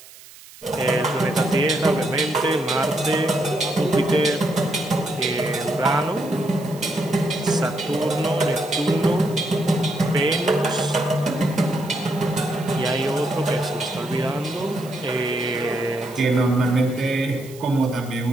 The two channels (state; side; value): noise; right; hiss, 20 dB below the sound